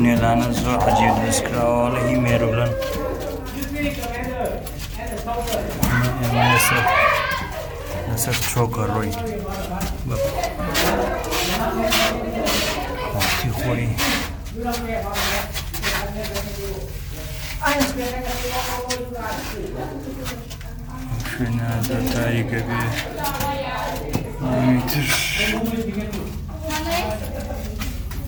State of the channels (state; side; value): identical; both; correlation 1.00